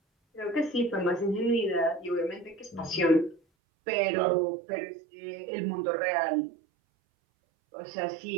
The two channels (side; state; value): left; drops out; at 3.4 s